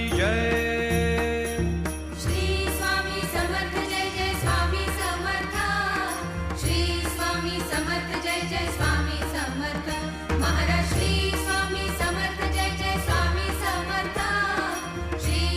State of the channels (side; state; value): both; identical; correlation 1.00